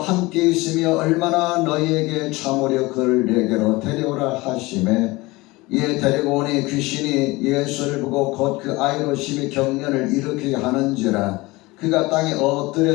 함께 있으며 얼마나 너희에게 참으려 그를 내게로 데려오라 하시매, 이에 데리고 오니 귀신이 예수를 보고 곧 그 아이로 심히 경련을 일으키게 하는지라. 그가 땅에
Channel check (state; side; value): quieter; right; 21.9 dB